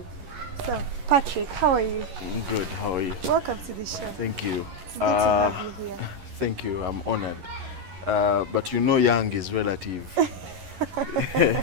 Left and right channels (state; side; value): late; left; 11 ms